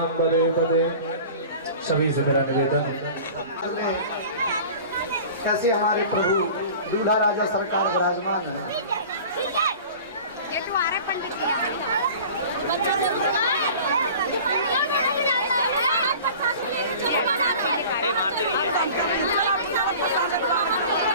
पदे पदे। सभी से मेरा निवेदन है कैसे हमारे प्रभु दूल्हा राजा सरकार विराजमान है।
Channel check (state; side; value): inverted; both; correlation -0.41